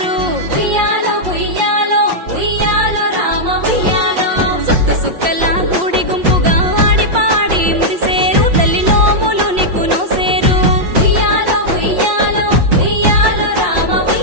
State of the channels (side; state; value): left; late; 5.7 ms